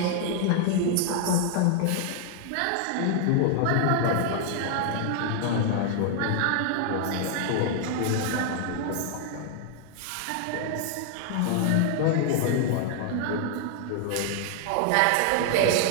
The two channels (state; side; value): different; both; correlation -0.01